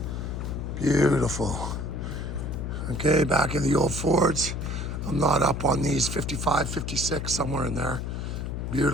Beautiful. Okay, back in the old Fords. I'm not up on these, 55, 56, somewhere in there.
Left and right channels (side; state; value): left; noise; hum, 4 dB below the sound